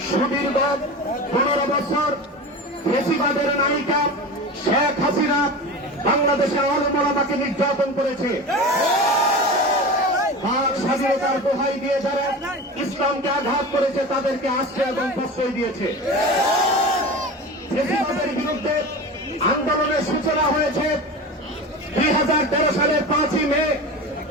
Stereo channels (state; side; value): normal; both; correlation 0.30